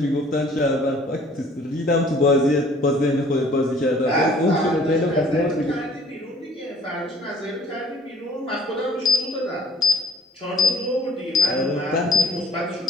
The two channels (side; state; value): both; normal; correlation 0.55